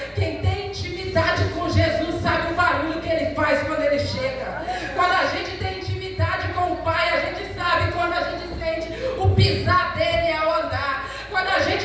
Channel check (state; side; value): identical; both; correlation 1.00